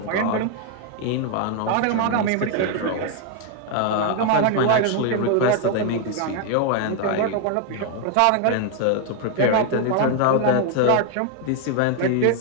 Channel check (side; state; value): both; different; correlation 0.00